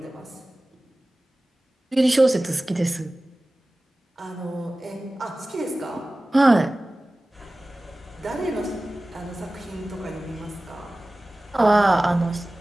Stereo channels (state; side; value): normal; both; correlation 0.97